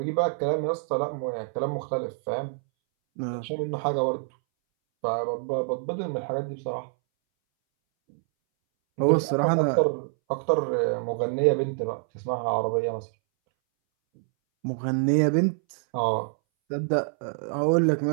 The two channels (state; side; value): silent; left; 61 dB below the other